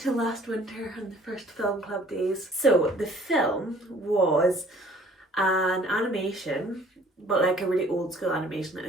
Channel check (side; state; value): both; normal; correlation 0.55